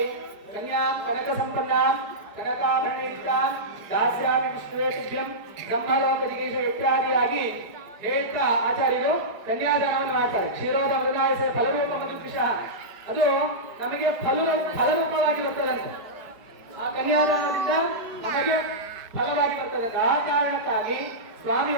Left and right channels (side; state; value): left; late; 5.1 ms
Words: ಕನಕ ಸಂಪನ್ನ ಕನಕಾಭರಣ ದಾಸ್ಯಾಮಿ ವಿಷ್ಣುವೇಶುಭ್ಯಂ ಬ್ರಹ್ಮಲೋಕ ಜಿಗೀಶ ಇತ್ಯಾದಿಯಾಗಿ ಹೇಳ್ತಾ ಆಚಾರ್ಯರು ಕನ್ಯಾದಾನವನ್ನು ಮಾಡ್ತಾರೆ. ಕ್ಷೀರೋದ ಮೃದಾಯಸ ಫಲರೂಪ ಮಧುದ್ವಿಷಃ, ಅದು ನಮಗೆ ಫಲರೂಪವಾಗಿ ಬರ್ತದಂತೆ. ಆ ಕನ್ಯಾದಾನದಿಂದ ನಮಗೆ ಫಲವಾಗಿ ಬರ್ತದಂತೆ. ಆ ಕಾರಣಕ್ಕಾಗಿ